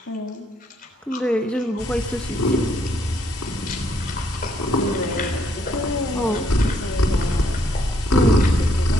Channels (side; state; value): both; normal; correlation 0.70